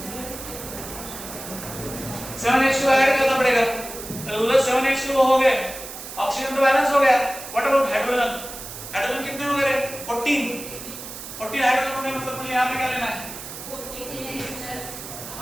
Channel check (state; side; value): noise; right; hiss, 11 dB below the sound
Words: 7H2 ऐड करना पड़ेगा, उधर 7H2 हो गया, ऑक्सीजन तो बैलेंस हो गया। What about hydrogen? हाइड्रोजन कितने हो गए? 14 हाइड्रोजन हो गए, मतलब मुझे यहाँ पे क्या लेना है? 14।